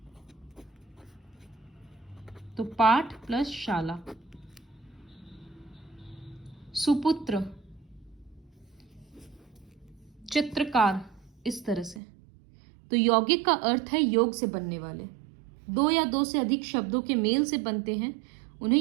तो पाठ प्लस शाला। सुपुत्र, चित्रकार, इस तरह से। तो यौगिक का अर्थ है योग से बनने वाले। 2 या 2 से अधिक शब्दों के मेल से बनते हैं,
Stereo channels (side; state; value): left; drops out; at 12.0 s